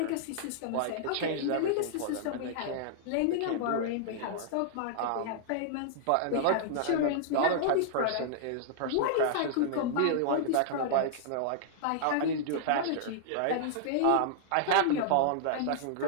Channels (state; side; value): different; both; correlation -0.01